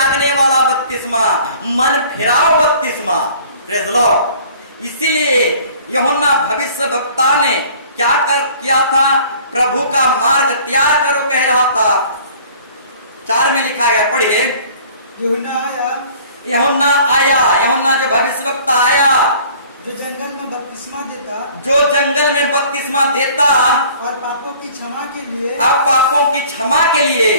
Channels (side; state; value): both; inverted; correlation -0.51